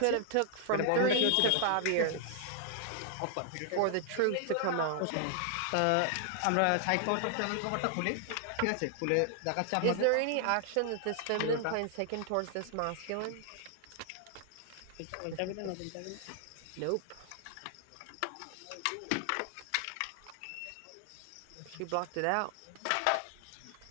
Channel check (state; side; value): different; both; correlation 0.00